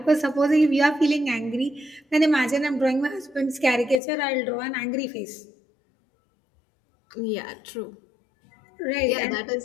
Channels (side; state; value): right; drops out; at 4.0 s